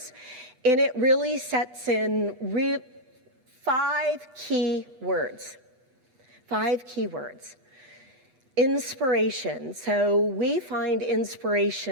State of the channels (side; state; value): left; late; 8.0 ms